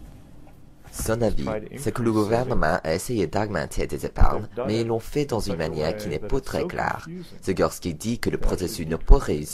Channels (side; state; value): both; identical; correlation 1.00